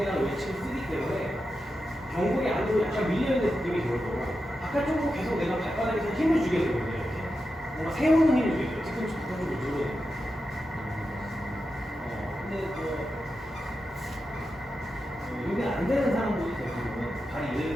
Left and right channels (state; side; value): normal; both; correlation 0.89